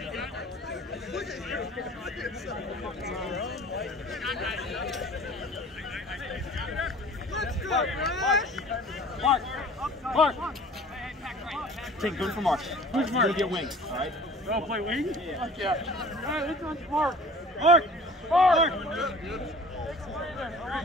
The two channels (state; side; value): normal; both; correlation 0.46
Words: Mark! Take good for Mark. Who's Mark? You'll get wings, alright? Go play wing? Yeah. Yeah. All right, this one's Mark. Mark! Mark!